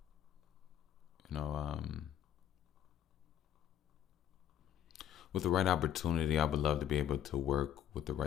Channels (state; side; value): quieter; right; 10.2 dB